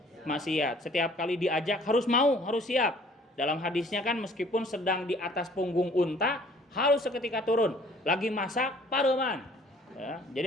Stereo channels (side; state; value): both; normal; correlation 0.55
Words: Setiap kali diajak harus mau, harus siap. Dalam hadisnya kan meskipun sedang di atas punggung unta harus seketika turun. Lagi masak paruman. Ya,